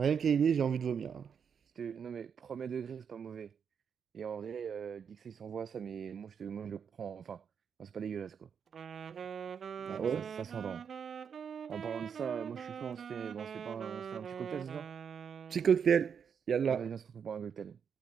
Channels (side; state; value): left; quieter; 7.0 dB